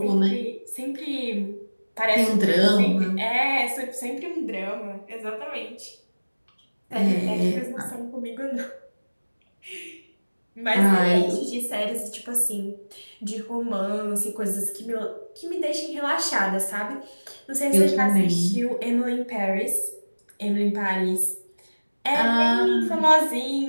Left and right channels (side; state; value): both; inverted; correlation -1.00